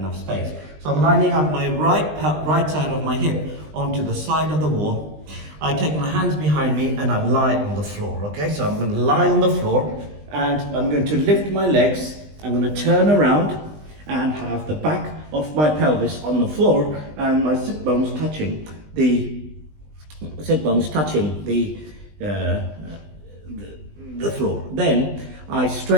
space. So I'm lining up my right side of my hip onto the side of the wall. I take my hands behind me and I lie on the floor, okay? So I'm going to lie on the floor and I'm going to lift my legs. I'm going to turn around and have the back of my pelvis on the floor and my sit bones touching the the floor. Then I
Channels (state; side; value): late; left; 20 ms